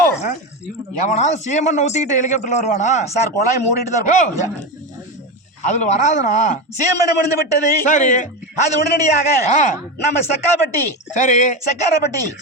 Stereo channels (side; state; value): both; normal; correlation 0.17